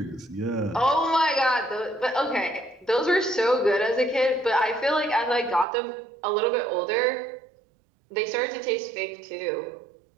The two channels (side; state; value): left; drops out; at 5.7 s